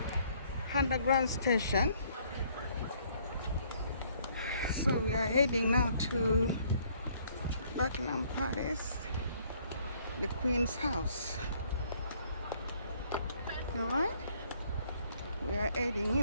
Underground Station. So we are heading now to Buckingham Palace, the Queen's house. Alright? We are heading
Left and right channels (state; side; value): inverted; both; correlation -0.64